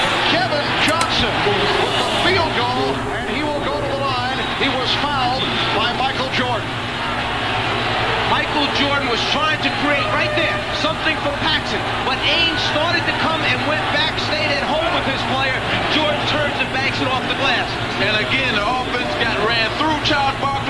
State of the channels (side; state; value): both; identical; correlation 1.00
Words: was fouled by Michael Jordan. Michael Jordan was trying to create right there something for Paxson, but Ainge started to come and went back, stayed at home with his player. Jordan turns and banks it off the glass. And again, the offense got ran through Charles